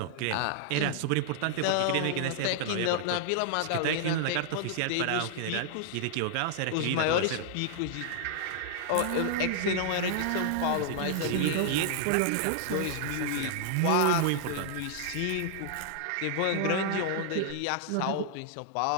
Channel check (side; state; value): both; different; correlation -0.01